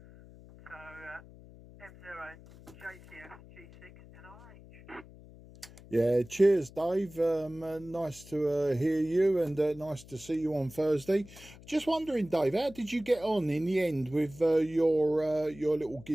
So, M0, JCF, G6, NRH. Yeah, cheers, Dave. Nice to hear you, and nice to see you on Thursday. Just wondering, Dave, how did you get on in the end with your little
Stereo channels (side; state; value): left; noise; hum, 20 dB below the sound